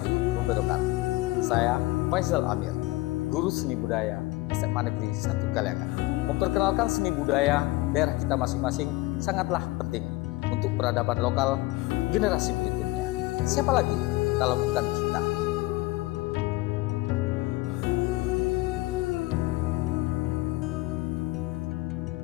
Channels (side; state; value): right; quieter; 20.1 dB